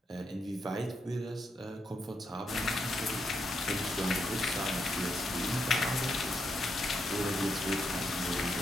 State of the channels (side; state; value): both; normal; correlation 0.80